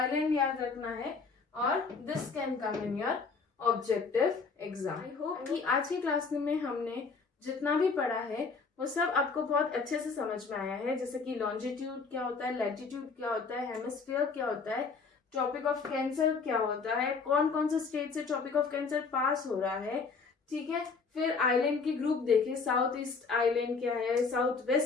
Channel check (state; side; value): quieter; right; 4.8 dB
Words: याद रखना है, और this can come in your objective exam. I hope कि आज की क्लास में हमने जितना भी पढ़ा है वो सब आपको बहुत अच्छे से समझ में आया है। जैसे कि लॉन्जिट्यूड क्या होता है, लैटिट्यूड क्या होता है, हेमिस्फीयर क्या होता है, ट्रॉपिक ऑफ कैंसर क्या होता है, कौन कौन से स्टेट से ट्रॉपिक ऑफ कैंसर पास हो रहा है, ठीक है। फिर आइलैंड की ग्रुप देखे, साउथ ईस्ट आइलैंड क्या है, साउथ